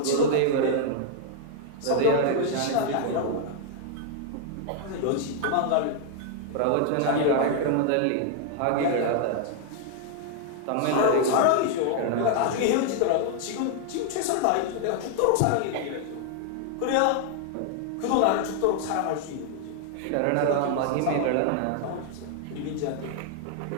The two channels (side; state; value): both; different; correlation 0.00